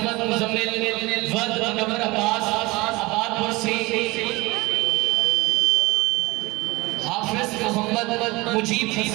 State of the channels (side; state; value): left; quieter; 22.5 dB